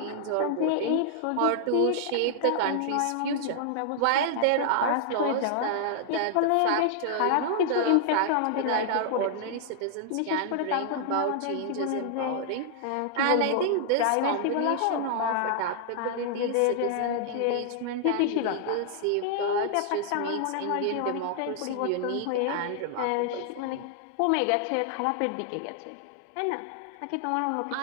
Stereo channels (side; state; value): both; different; correlation -0.01